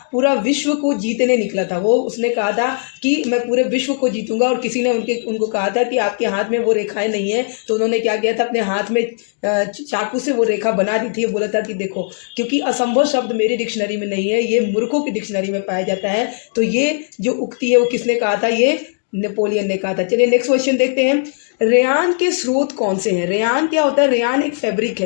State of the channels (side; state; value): right; silent; 67 dB below the other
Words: पूरा विश्व को जीतने निकला था, वो उसने कहा था कि मैं पूरे विश्व को जीतूंगा। और किसी ने उनको कहा था कि आपके हाथ में वो रेखाएं नहीं है, तो उन्होंने क्या किया था? अपने हाथ में चाकू से वो रेखा बना दी थी। बोला था कि देखो, क्योंकि असंभव शब्द मेरी डिक्शनरी में नहीं है, ये मूर्खों की डिक्शनरी में पाया जाता है। तो ये जो उक्ति है वो किसने कहा था? ये नेपोलियन ने कहा था। चलिए नेक्स्ट क्वेश्चन देखते हैं। रेयान के स्रोत कौन से हैं? रेयान क्या होता है? रेयान एक फैब्रिक